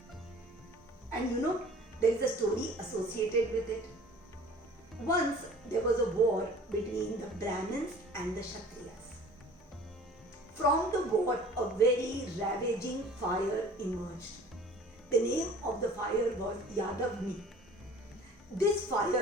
And there is a story associated with it. Once there was a war between the Brahmins and the Kshatriyas. From the war, a very ravaging fire emerged. The name of the fire was Yadavni. This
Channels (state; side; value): normal; both; correlation 0.47